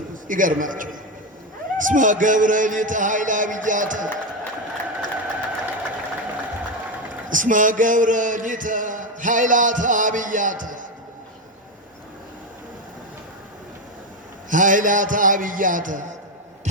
ይገርማቸው እስመ ገብረ ሊተ ኃይለ አብያተ እስመ ገብረ ሊተ ኃይላተ አብያተ ኃይላተ አብያተ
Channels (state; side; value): normal; both; correlation 0.11